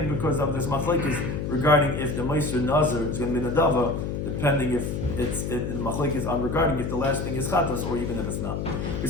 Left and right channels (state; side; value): noise; left; hum, 3 dB below the sound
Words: because of this machlekes regarding if the Ma'aser Nazir is going to be Nadava, depending if the machlekes on regarding if the last thing is Chatas or even if it's not. We